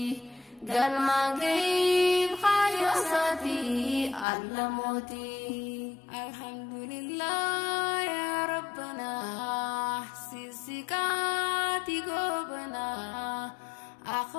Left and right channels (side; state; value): right; drops out; at 4.2 s